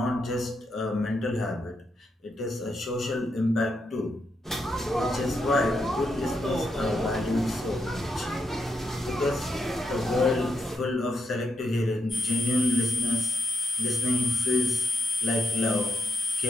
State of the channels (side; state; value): both; normal; correlation 0.80